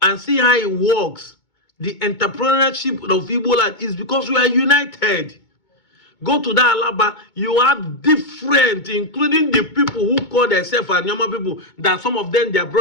and see how it works. The entrepreneurship of Igbo land is because we are united. Go to that Alaba, you have different, including the people who call themselves Anyoma people, that some of them, their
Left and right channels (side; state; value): right; late; 2.2 ms